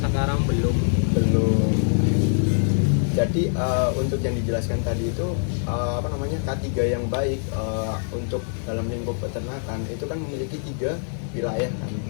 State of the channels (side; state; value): right; silent; digital silence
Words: belum. Jadi untuk yang dijelaskan tadi itu K3 yang baik untuk dalam lingkup peternakan itu kan memiliki 3 wilayah kan.